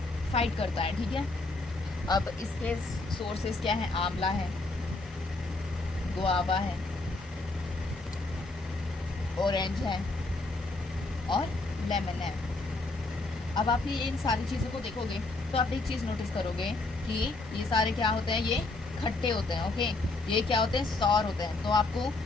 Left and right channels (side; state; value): right; quieter; 3.2 dB